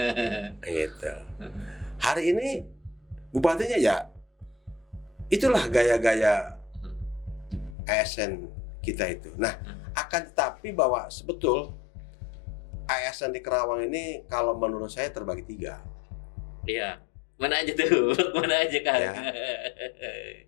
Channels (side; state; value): right; drops out; at 7.8 s